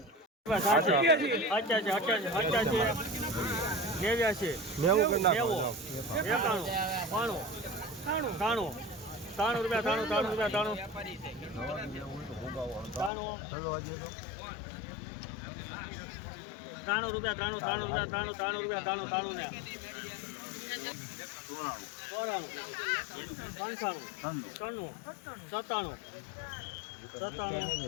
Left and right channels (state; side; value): drops out; right; at 13.1 s